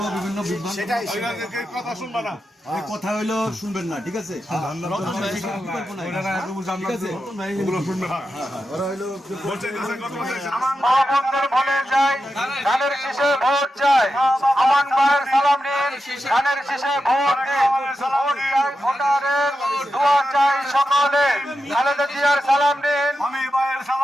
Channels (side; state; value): both; normal; correlation 0.89